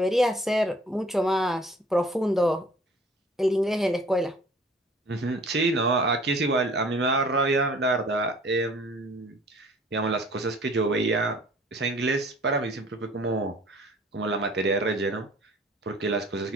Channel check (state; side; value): normal; both; correlation 0.51